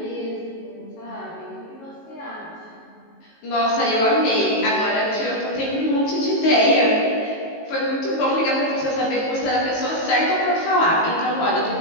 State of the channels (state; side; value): late; right; 19 ms